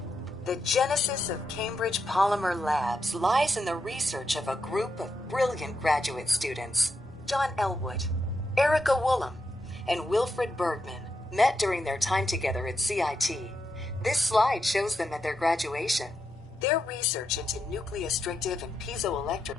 The genesis of Cambridge Polymer Labs lies in the research of a group of brilliant graduate students. John Elwood, Erica Woolham, and Wilfred Bergman met during their time together at CIT. This slide shows them at their graduation. Their research into nucleostrictive and piezoelectric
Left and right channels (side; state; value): both; normal; correlation 0.84